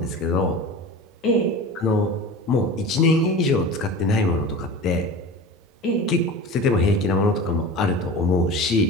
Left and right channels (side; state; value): both; normal; correlation 0.33